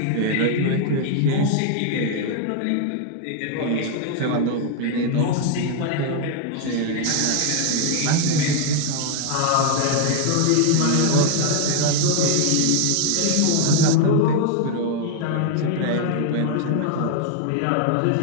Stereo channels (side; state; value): both; different; correlation 0.00